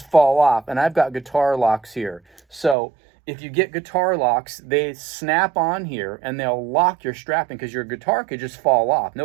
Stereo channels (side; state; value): left; drops out; at 2.8 s